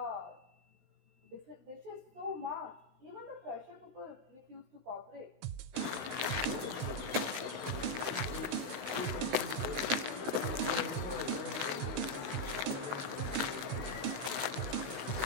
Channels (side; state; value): left; late; 16 ms